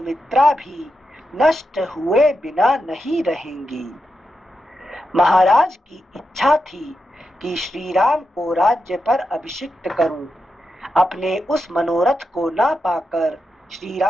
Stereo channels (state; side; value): normal; both; correlation 0.87